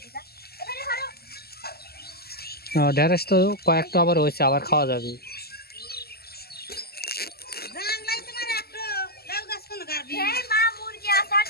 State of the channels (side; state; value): right; late; 0.46 ms